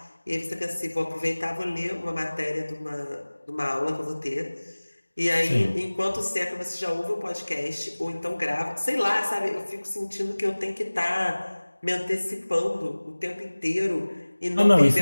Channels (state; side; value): inverted; both; correlation -1.00